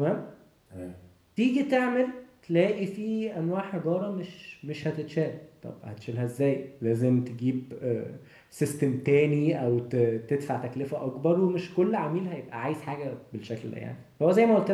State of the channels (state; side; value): identical; both; correlation 1.00